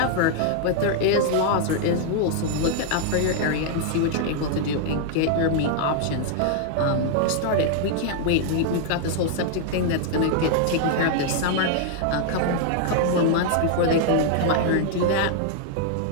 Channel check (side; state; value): both; different; correlation -0.01